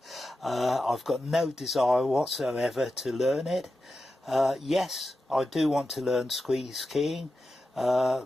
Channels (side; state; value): both; normal; correlation 0.91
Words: I've got no desire whatsoever to learn it. Yes, I do want to learn squeeze keying,